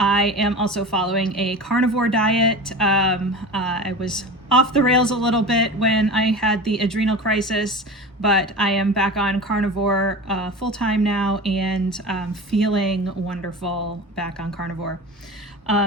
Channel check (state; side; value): normal; both; correlation 0.31